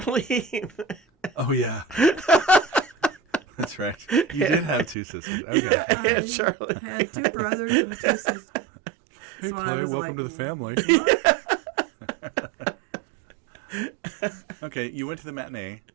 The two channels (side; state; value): left; drops out; at 5.0 s